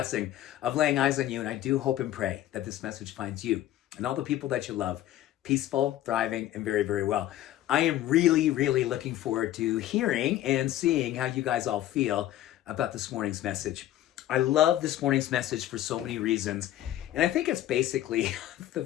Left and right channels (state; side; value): quieter; right; 13.4 dB